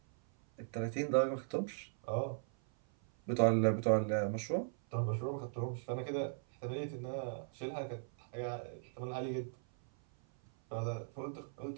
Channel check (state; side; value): silent; left; 52 dB below the other